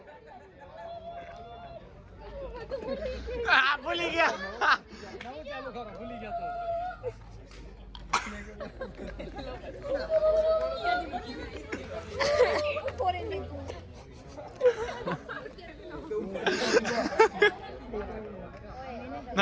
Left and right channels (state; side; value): identical; both; correlation 1.00